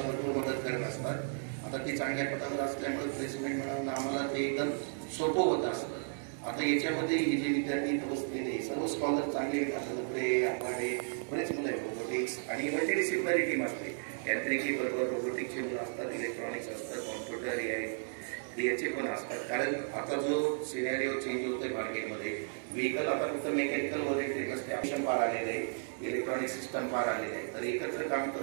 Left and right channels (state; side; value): silent; left; 55 dB below the other